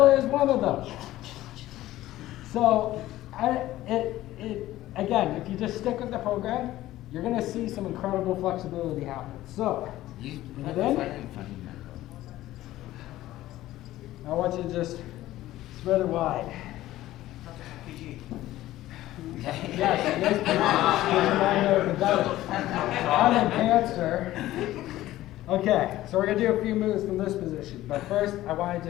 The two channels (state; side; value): quieter; right; 15.3 dB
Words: is one of them. So, again, if you just stick with the program, you're going to see some incredible flexibility happen. So, bring it in. I want you to just spread it wide. Yes, it is I'm in pants, sir. Okay, so we're going to do a few moves from this position. But first, I want to